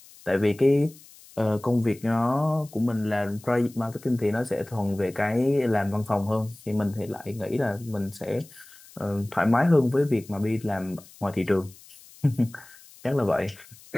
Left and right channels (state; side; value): noise; left; hiss, 23 dB below the sound